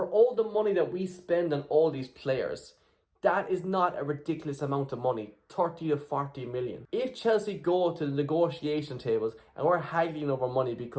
all the money that we spend on all these players, that is not a ridiculous amount of money. 30 to 40 million. If Chelsea go to the negotiation tables and we're haggling over money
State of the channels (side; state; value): both; identical; correlation 1.00